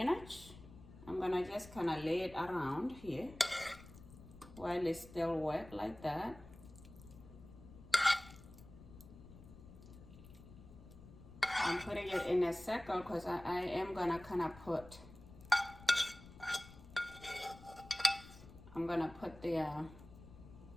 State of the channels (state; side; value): noise; left; rumble, 18 dB below the sound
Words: I'm gonna just kind of lay it around here while it's still wet like that. I'm putting it in a circle because I am gonna kind of put, I'm gonna put the